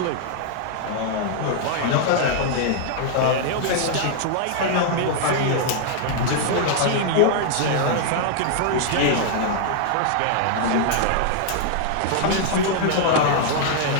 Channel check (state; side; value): different; both; correlation -0.01